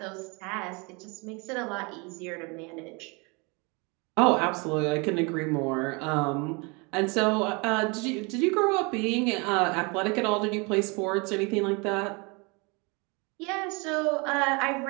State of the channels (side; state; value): left; quieter; 29.7 dB